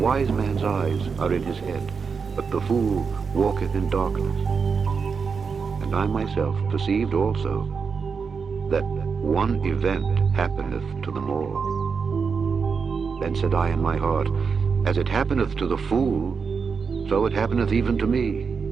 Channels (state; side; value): quieter; left; 5.6 dB